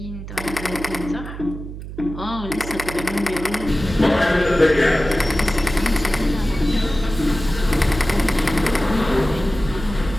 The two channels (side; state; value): right; noise; hum, 10 dB below the sound